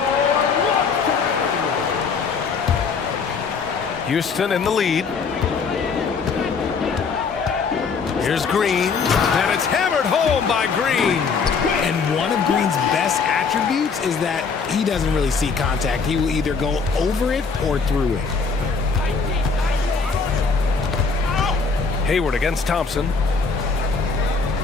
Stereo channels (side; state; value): right; quieter; 5.1 dB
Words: Houston in the lead. Here's Green, and it's hammered home by Green. And one of Green's best attributes is that he doesn't really see contact. He will either go over it or through it. Hayward against Thompson.